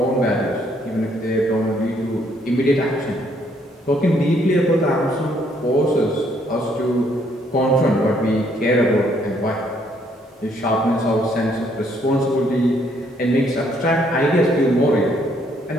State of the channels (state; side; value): normal; both; correlation 0.68